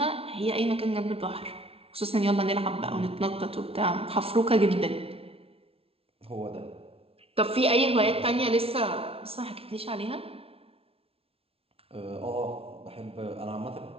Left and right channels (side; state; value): left; late; 0.28 ms